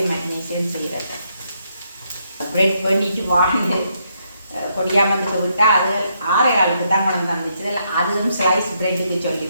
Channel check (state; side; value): inverted; both; correlation -0.76